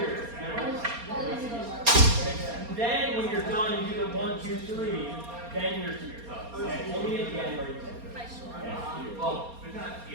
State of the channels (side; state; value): left; late; 4.3 ms